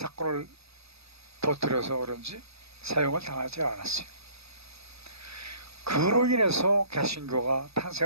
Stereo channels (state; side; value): late; left; 0.78 ms